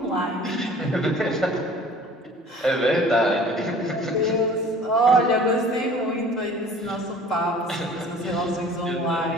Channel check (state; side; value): normal; both; correlation 0.47